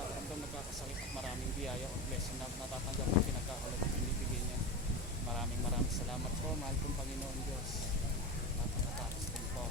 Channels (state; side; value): normal; both; correlation 0.23